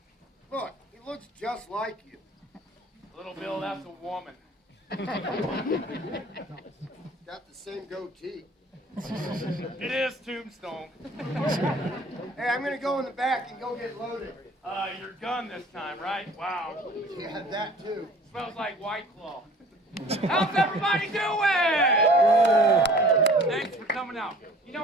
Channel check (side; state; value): both; normal; correlation 0.49